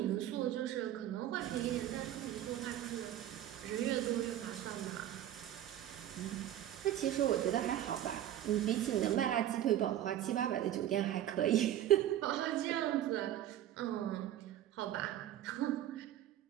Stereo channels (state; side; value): quieter; left; 12.0 dB